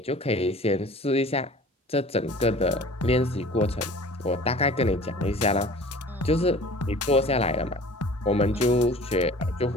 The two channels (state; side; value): normal; both; correlation 0.45